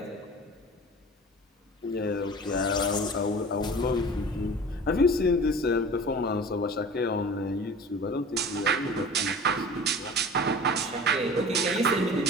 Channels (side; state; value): both; normal; correlation 0.39